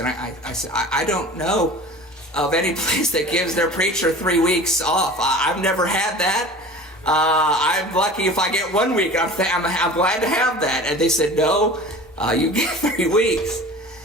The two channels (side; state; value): both; normal; correlation 0.39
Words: I said, I don't know of any place that gives their preacher 3 weeks off. I've never had that. I'm lucky if I get 1 week. I'm glad to have that. And they said, no, you get 3 weeks.